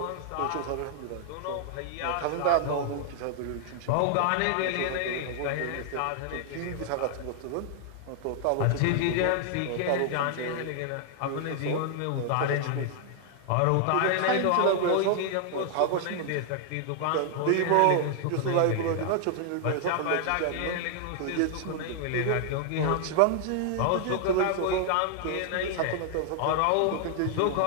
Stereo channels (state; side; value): different; both; correlation 0.00